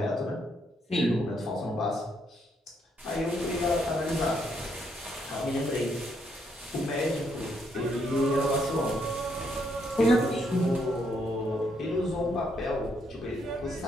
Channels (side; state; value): both; normal; correlation 0.74